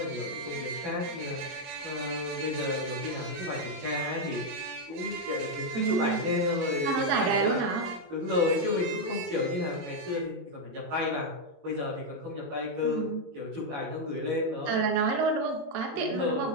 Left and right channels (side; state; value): left; late; 22 ms